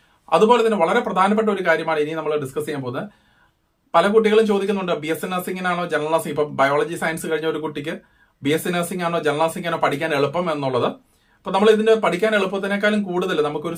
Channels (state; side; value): identical; both; correlation 1.00